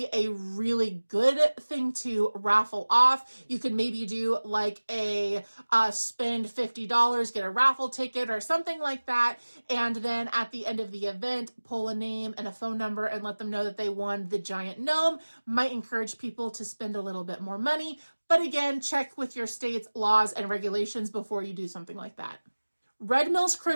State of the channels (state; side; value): inverted; both; correlation -1.00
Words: a really good thing to raffle off. You could maybe do like a spend $50, get a raffle ticket or something like that, and then at the end of the event pull a name and a phone number and let them know that they won the giant gnome. Might encourage people to spend a little bit more money, but again, check with your state's laws and regulations before you do something like that. Red Mills